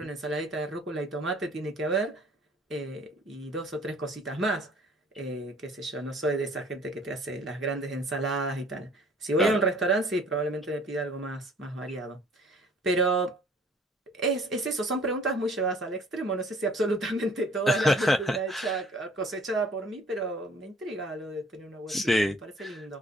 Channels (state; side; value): normal; both; correlation 0.54